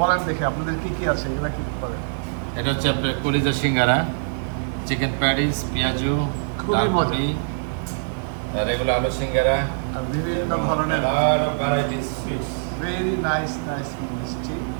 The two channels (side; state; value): left; silent; 63 dB below the other